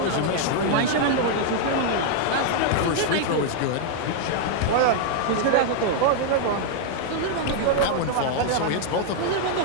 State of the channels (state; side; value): different; both; correlation 0.00